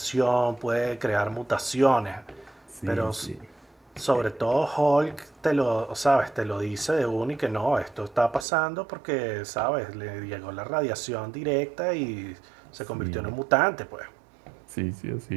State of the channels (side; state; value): left; drops out; at 8.5 s